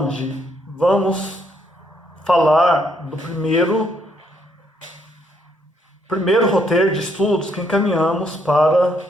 vamos falar do primeiro roteiro de estudos que encaminhamos para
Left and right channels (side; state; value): both; normal; correlation 0.72